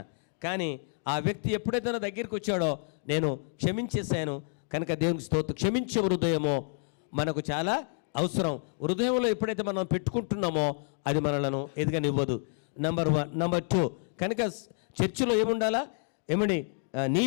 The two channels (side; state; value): right; silent; 58 dB below the other